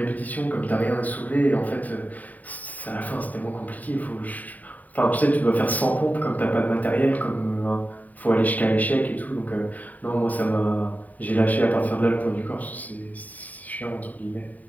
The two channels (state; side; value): late; right; 0.076 ms